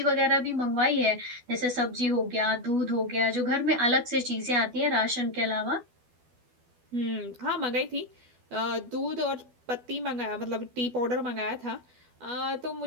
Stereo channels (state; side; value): late; left; 12 ms